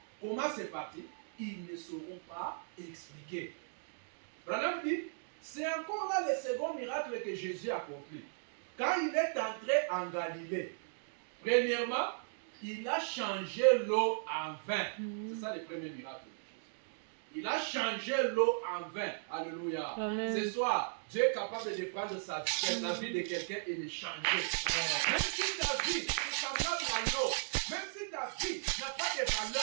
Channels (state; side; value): silent; left; digital silence